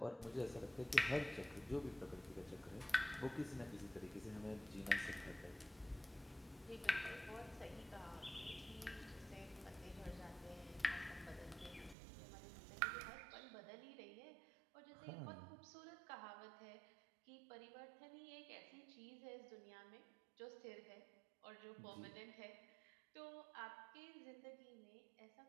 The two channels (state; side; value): drops out; left; at 12.0 s